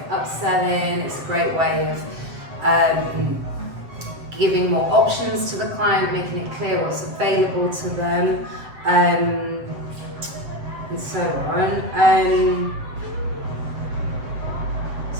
of upselling, it's a great way of giving more options to the client, making it clear what's available to them, and so on.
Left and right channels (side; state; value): left; late; 7.8 ms